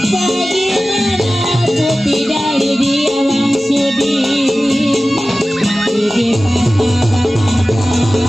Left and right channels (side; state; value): both; normal; correlation 0.96